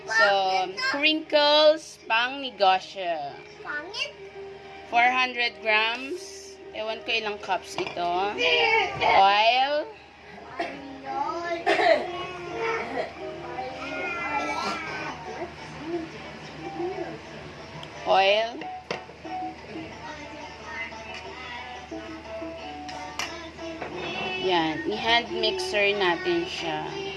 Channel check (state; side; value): identical; both; correlation 1.00